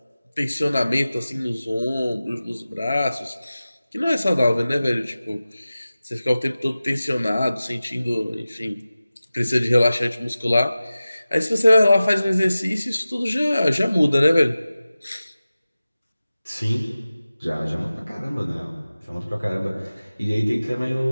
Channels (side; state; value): both; inverted; correlation -0.96